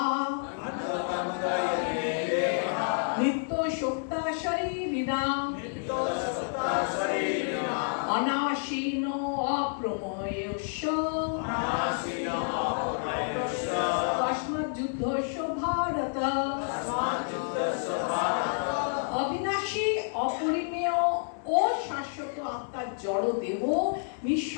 নিত্য শক্তা শরীরিণাম অনাশীন অপ্রময়স্য তস্মাৎ যুদ্ধস্য ভারত। অবিনাশী, অপরিমেয় ও শাশ্বত আত্মার জড় দেহ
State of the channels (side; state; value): right; silent; 58 dB below the other